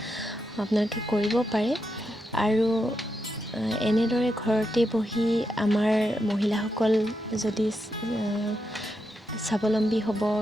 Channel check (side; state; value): both; normal; correlation 0.85